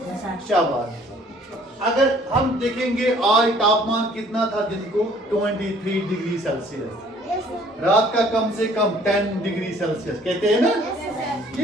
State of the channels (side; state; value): both; normal; correlation 0.58